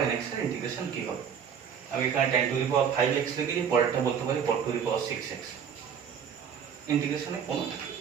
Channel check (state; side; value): quieter; left; 7.6 dB